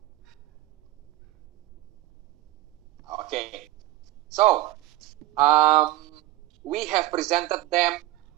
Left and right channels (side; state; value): left; quieter; 16.0 dB